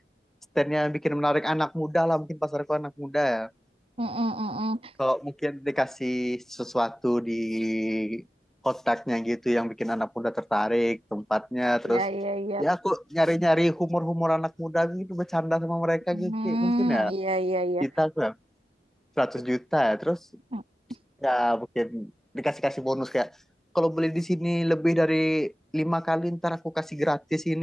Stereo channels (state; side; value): normal; both; correlation 0.95